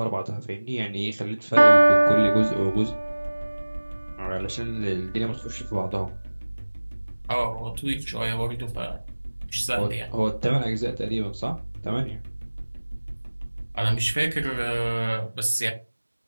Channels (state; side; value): inverted; both; correlation -1.00